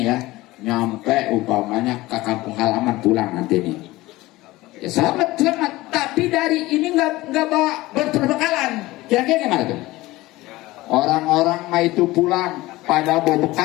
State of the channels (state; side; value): quieter; right; 18.9 dB